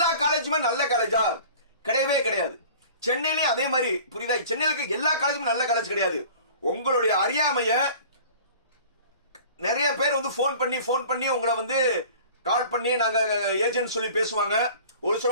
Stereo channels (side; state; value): both; inverted; correlation -0.45